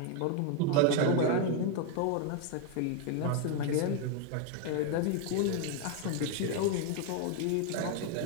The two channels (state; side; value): different; both; correlation 0.00